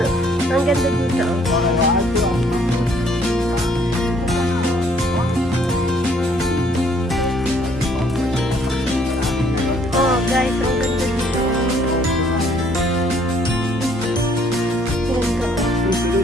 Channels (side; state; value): right; noise; hum, 21 dB below the sound